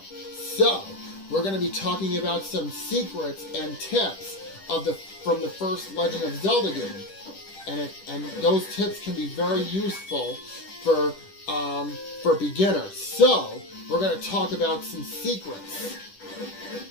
So, we're going to be talking about some secrets and tips from the first Legend of Zelda game. And those tips can be very useful for beginners. So, we're going to talk about some secrets.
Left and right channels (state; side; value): late; right; 10 ms